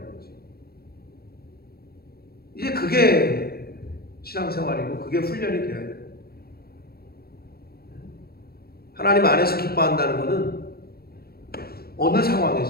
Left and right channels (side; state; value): right; late; 0.45 ms